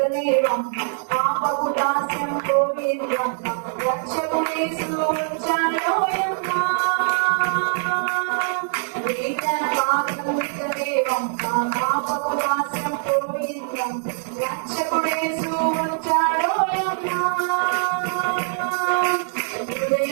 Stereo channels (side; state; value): left; silent; digital silence